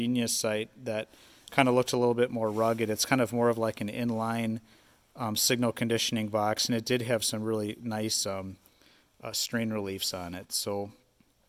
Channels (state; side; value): identical; both; correlation 1.00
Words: site that kind of looked a little bit more rugged, it's kind of more of like an inline signal conditioning box, and it did have some really nice strain reliefs on it. So,